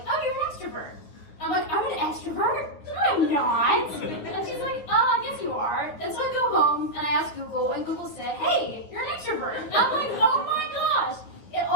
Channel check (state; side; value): late; right; 9.6 ms